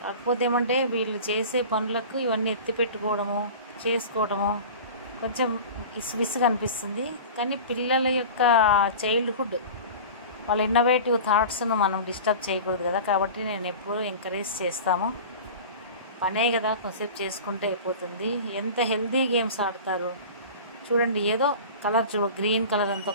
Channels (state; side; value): inverted; both; correlation -0.35